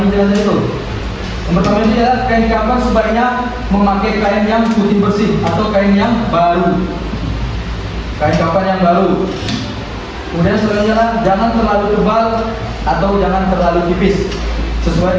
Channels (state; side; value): identical; both; correlation 1.00